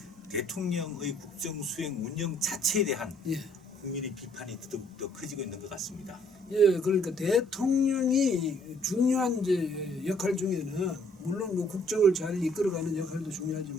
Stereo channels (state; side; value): normal; both; correlation 0.63